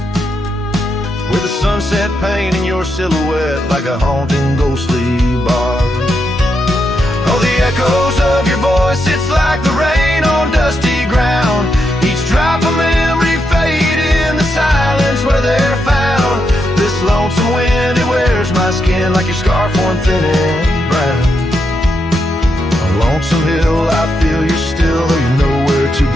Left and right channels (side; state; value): both; normal; correlation 0.82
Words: With the sunset painting your silhouette like a haunting ghostly bar. Oh, the echoes of your voice, it's like the rain on dusty ground. Each drop of memory fade in the silence where they're found. This lonesome wind, it wears my skin like your scarf worn thin and brown. On Lonesome Hill, I feel you're still, though you're nowhere to